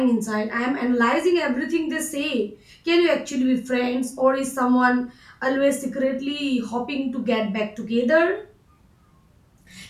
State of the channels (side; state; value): both; identical; correlation 1.00